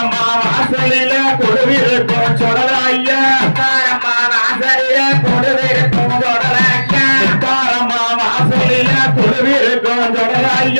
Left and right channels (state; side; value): inverted; both; correlation -1.00